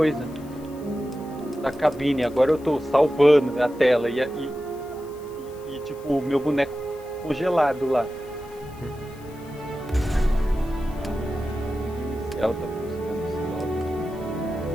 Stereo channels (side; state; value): left; noise; hiss, 25 dB below the sound